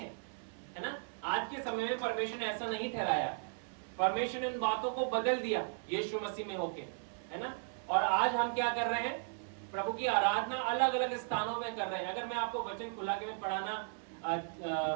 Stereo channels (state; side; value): silent; left; 54 dB below the other